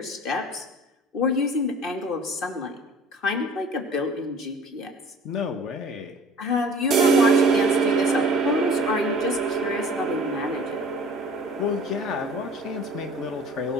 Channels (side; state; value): both; normal; correlation 0.46